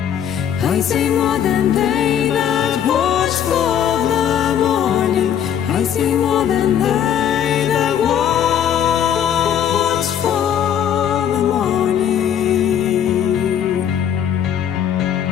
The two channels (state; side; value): quieter; right; 9.3 dB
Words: I say more than they that watch for the morning. I say more than they that watch for the morning.